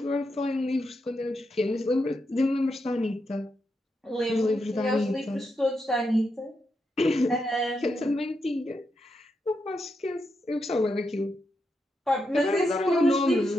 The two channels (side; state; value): both; normal; correlation 0.84